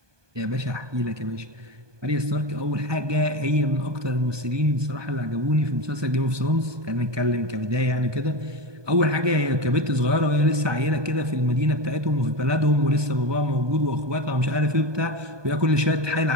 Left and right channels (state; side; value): late; left; 1.2 ms